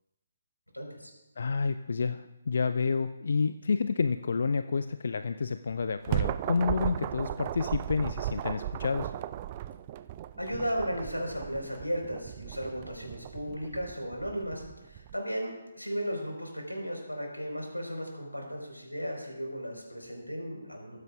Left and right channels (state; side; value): inverted; both; correlation -0.81